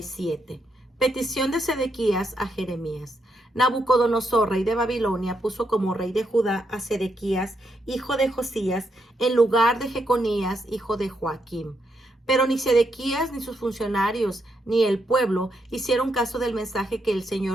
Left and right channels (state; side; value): normal; both; correlation 0.80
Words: Petición de Sedequías a Jeremías. Nabucodonosor, rey de Babilonia, puso como rey de Judá a Sedequías, hijo de Josías, en lugar de Jeconías, hijo de Joaquim. Pero ni Sedequías, ni sus funcionarios, ni el pueblo hicieron caso del mensaje que el